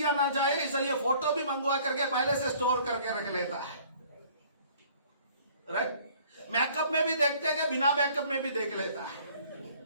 ना जाए, इसलिए फोटो भी मंगवा करके पहले से स्टोर करके रख लेता है। राइट? मेकअप में भी देखते हैं, बिना मेकअप में भी देख लेता है।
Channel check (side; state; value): both; inverted; correlation -0.55